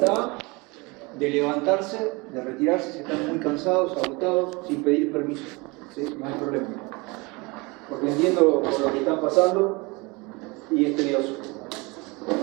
de levantarse, de retirarse si están muy cansados, agotados, sin pedir permiso. ¿Sí? No hay problema. Porque entiendo por lo que están pasando y es tedioso.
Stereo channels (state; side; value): quieter; left; 26.1 dB